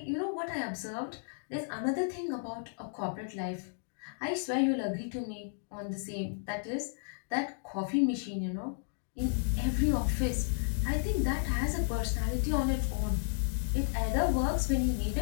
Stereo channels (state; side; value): silent; right; digital silence